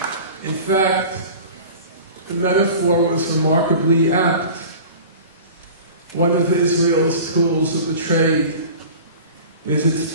In fact, the metaphor was remarkably apt. One of Israel's tools of the trade is its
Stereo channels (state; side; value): inverted; both; correlation -0.40